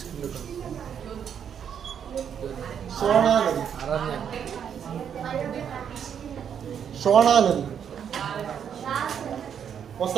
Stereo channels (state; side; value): quieter; left; 8.2 dB